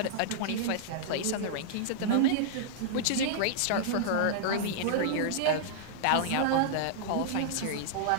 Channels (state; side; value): different; both; correlation -0.02